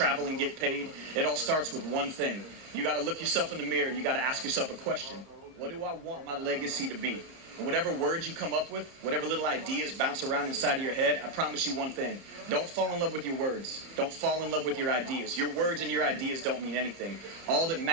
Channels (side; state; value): left; late; 30 ms